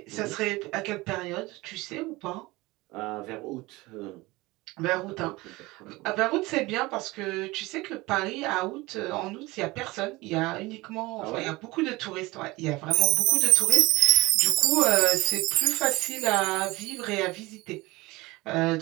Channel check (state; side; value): quieter; left; 21.4 dB